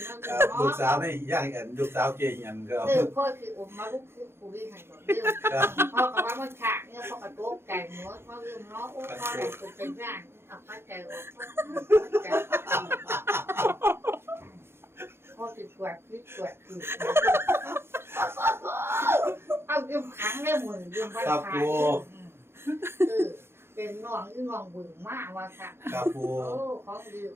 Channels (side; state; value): left; late; 0.12 ms